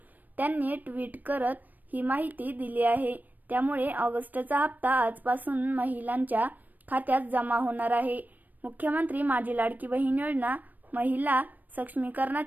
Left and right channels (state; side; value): late; left; 0.085 ms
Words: त्यांनी ट्विट करत ही माहिती दिली आहे. त्यामुळे ऑगस्टचा हप्ता आजपासून महिलांच्या खात्यात जमा होणार आहे. मुख्यमंत्री माझी लाडकी बहीण योजना, महिला